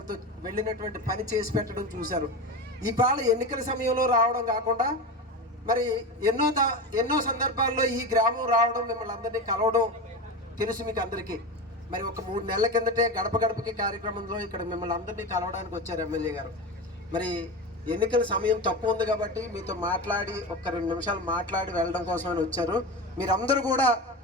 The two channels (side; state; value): both; normal; correlation 0.23